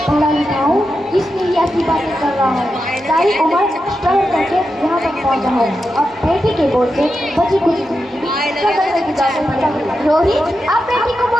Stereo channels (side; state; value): both; normal; correlation 0.88